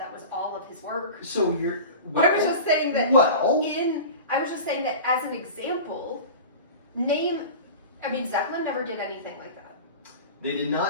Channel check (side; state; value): both; inverted; correlation -0.34